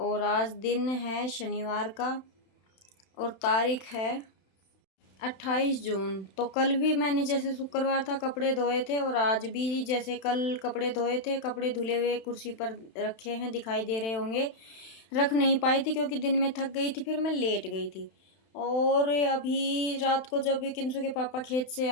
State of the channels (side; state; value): right; late; 31 ms